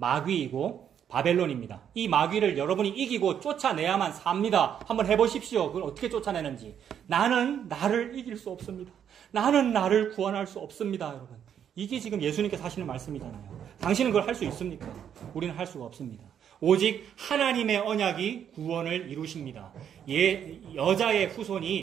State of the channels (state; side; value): quieter; left; 8.9 dB